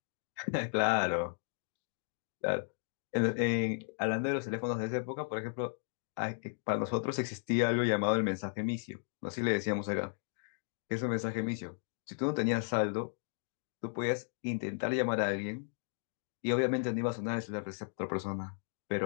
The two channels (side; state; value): right; silent; digital silence